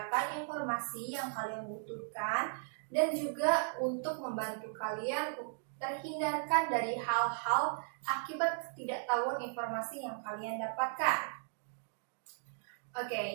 informasi yang kalian butuhkan dan juga untuk membantu kalian terhindarkan dari hal-hal akibat ketidaktahuan informasi yang kalian dapatkan.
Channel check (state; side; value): silent; left; digital silence